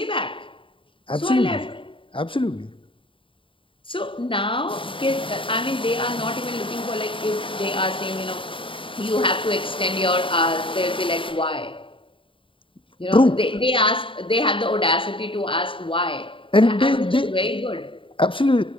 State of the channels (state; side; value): late; right; 0.25 ms